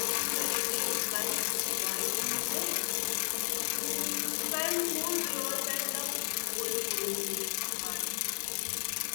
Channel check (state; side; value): silent; right; 56 dB below the other